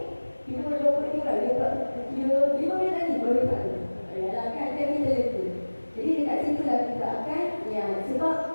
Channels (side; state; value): both; inverted; correlation -1.00